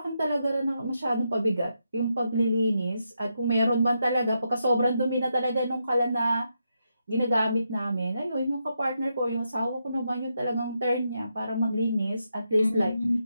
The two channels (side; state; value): both; inverted; correlation -0.83